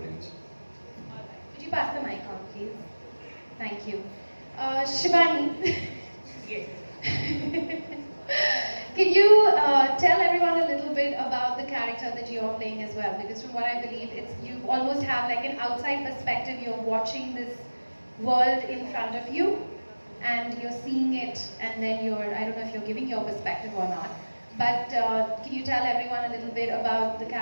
Could you pass the mic on, please? Thank you. Shivani. Yes. Can you tell everyone a little bit about the character that you're playing as well? Because from what I believe, you almost have like an outside perspective. You're watching this world in front of you, and you're seeing it, and then I don't know if you're giving your perspective or not, but can you tell everyone a little bit about the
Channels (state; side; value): inverted; both; correlation -1.00